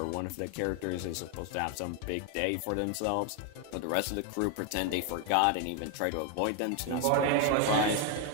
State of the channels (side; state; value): both; different; correlation 0.01